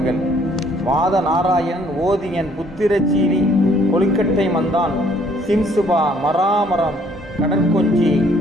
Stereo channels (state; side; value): normal; both; correlation 0.63